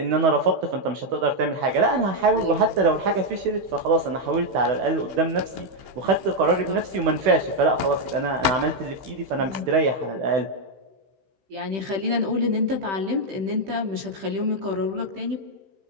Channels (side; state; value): left; late; 15 ms